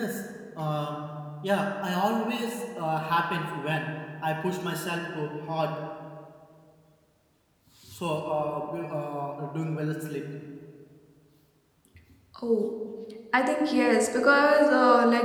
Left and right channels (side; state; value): both; identical; correlation 1.00